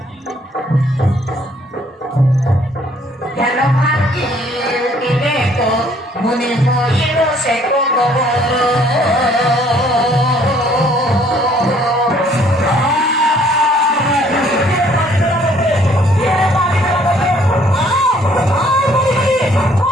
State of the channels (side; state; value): both; normal; correlation 0.62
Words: জ্ঞান ভাঙি দিলে তো মনে হইল সে কত ভালো